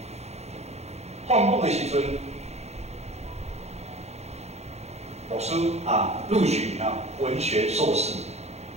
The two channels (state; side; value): late; left; 0.31 ms